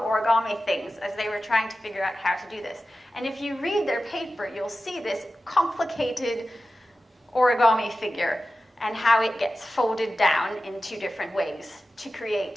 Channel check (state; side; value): normal; both; correlation 0.94